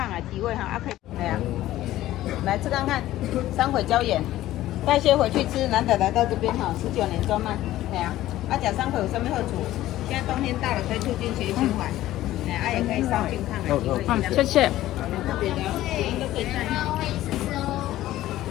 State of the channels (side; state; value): right; quieter; 14.7 dB